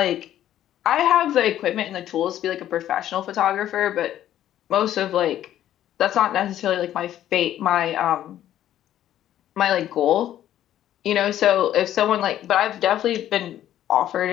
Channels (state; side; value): quieter; right; 11.9 dB